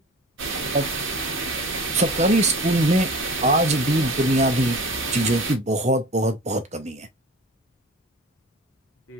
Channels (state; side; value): normal; both; correlation 0.38